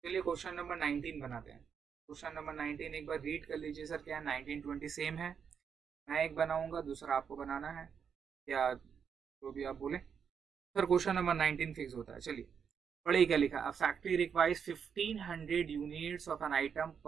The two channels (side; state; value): left; quieter; 7.0 dB